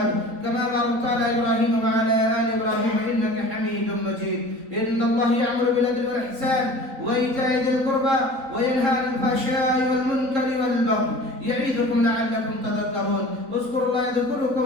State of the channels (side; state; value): left; late; 3.8 ms